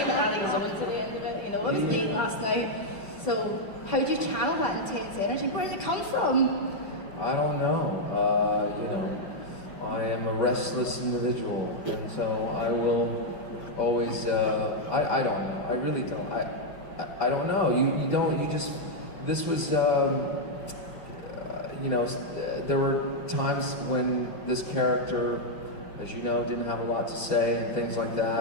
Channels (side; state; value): right; late; 5.3 ms